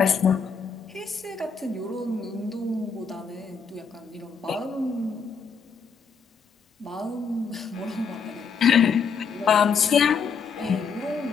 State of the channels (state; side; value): quieter; right; 5.8 dB